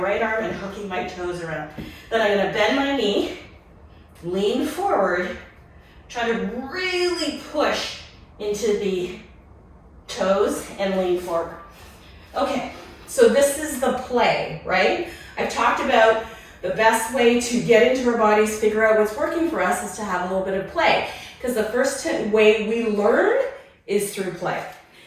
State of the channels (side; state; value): both; identical; correlation 1.00